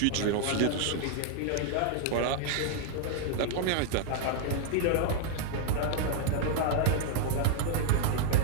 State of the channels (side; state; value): both; different; correlation 0.00